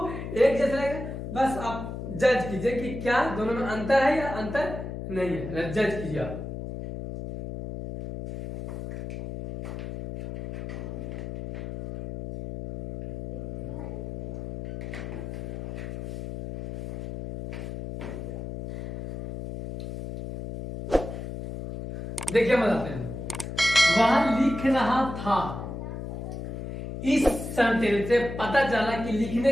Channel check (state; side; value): noise; left; hum, 7 dB below the sound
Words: एक जैसे लगेंगे। बस आप जज कीजिए कि क्या दोनों में अंतर है या अंतर नहीं है, जज कीजिए आप। देखिए बताते हैं, वह लिख रहा था। इस सेंटेंस से पता चला कि